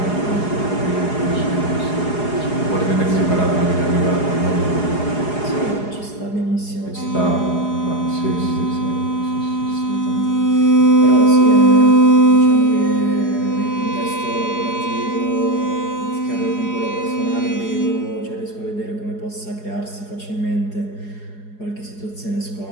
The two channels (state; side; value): late; right; 4.8 ms